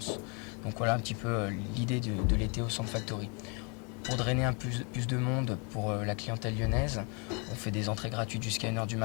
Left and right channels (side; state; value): right; quieter; 34.8 dB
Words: Donc voilà un petit peu l'idée de l'été au Sound Factory. Pour drainer un plus de monde pour la clientèle lyonnaise, on fait des entrées gratuites jusqu'à 1h du